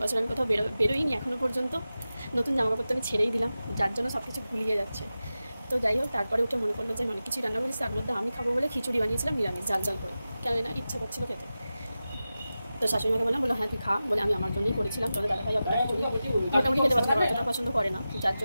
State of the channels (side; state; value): both; inverted; correlation -0.94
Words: আমি কোথাও বেরোইনি এখনও পর্যন্ত। নতুন জামাকাপড় তো আমি ছেড়েই দিলাম, যার জন্য সব কিছু ভুলিয়ে যাচ্ছে। তো যাই হোক, তারপরে উঠে মনে পড়লো যে অনেক কিছুই রান্না করেছি, তার মধ্যে আমি খাবো বলে খিচুড়ি বানিয়েছিলাম নিরামিষ, জাল করে, কেন না ইচ্ছা করছিল খেতে। তো শাশুড়িমাকে বললো হ্যাঁ তুই খা, বলে আমি আমার জন্যই করেছিলাম। তোমাদের দাদাভাই মোটামুটি খেতে পছন্দ করে, অতটা পছন্দ করে না, যার